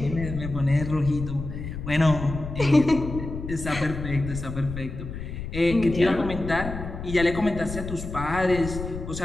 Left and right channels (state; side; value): noise; left; rumble, 8 dB below the sound